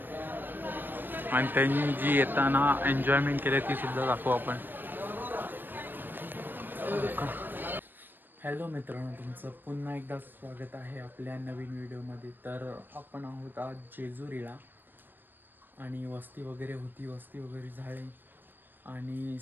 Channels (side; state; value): left; late; 0.093 ms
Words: आणि त्यांनी जी येताना एन्जॉयमेंट केली ती सुद्धा दाखवू आपण. हॅलो मित्रांनो, तुमचं पुन्हा एकदा स्वागत आहे आपल्या नवीन व्हिडिओमध्ये. तर आपण आहोत आज जेजुरीला आणि वस्ती वगैरे होती, वस्ती वगैरे झाली आणि